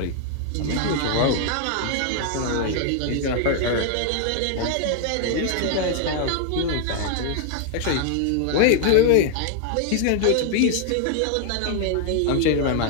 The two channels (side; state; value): both; different; correlation 0.00